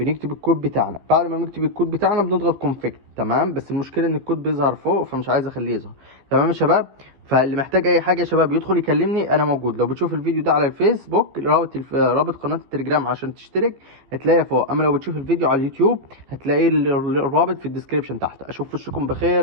الكود بتاعنا. بعد ما نكتب الكود بتاعنا بنضغط كونفيكت. تمام، بس المشكله ان الكود بيظهر فوق فمش عايز اخليه يظهر. تمام يا شباب. فاللي محتاج اي حاجه يا شباب يدخل يكلمني، انا موجود. لو بتشوف الفيديو ده على الفيسبوك رابط قناه التليجرام عشان تشترك هتلاقيها فوق، اما لو بتشوف الفيديو على اليوتيوب هتلاقي الرابط في الديسكريبشن تحت. اشوف وشكم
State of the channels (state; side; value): late; left; 15 ms